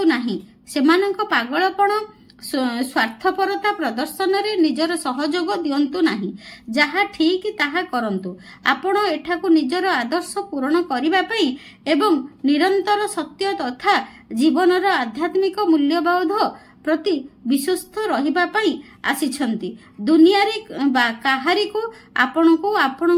नाही। सेमानंक पागलपण स्वार्थपरता प्रदर्शन रे निजर सहयोग दियंतु नाही। जहा ठीक ताहा करंतु। आपण एठाकु निजर आदर्श पूर्ण करिबा पई एवं निरंतर सत्य तथा जीवनर आध्यात्मिक मूल्यबोध प्रति विश्वस्त रहिबा पई आसीछंती। दुनिया रे काहारी को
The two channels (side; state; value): both; identical; correlation 1.00